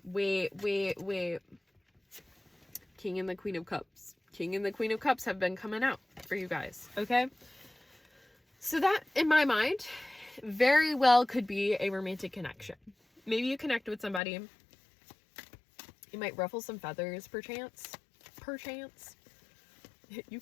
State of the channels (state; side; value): drops out; right; at 14.2 s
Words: King and the Queen of Cups. King and the Queen of Cups have been coming out for you guys, okay? So that, in my mind, very well could be a romantic connection. Maybe you connect with somebody. You might ruffle some feathers, perchance. You